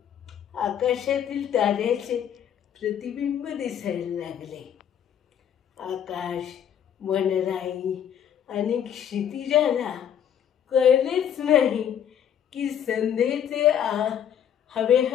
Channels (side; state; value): right; quieter; 9.3 dB